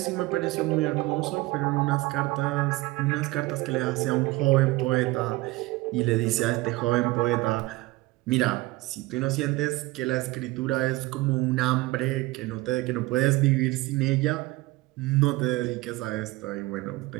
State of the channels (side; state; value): left; quieter; 20.4 dB